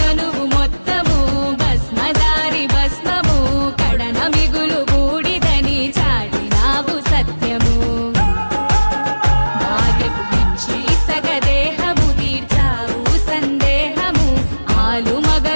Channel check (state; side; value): inverted; both; correlation -1.00